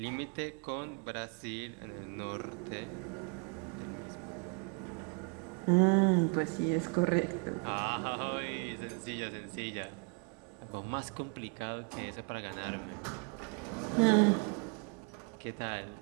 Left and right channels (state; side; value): quieter; left; 33.9 dB